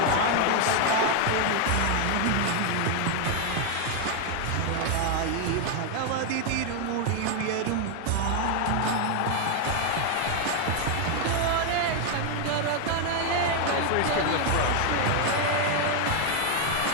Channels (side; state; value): both; different; correlation 0.01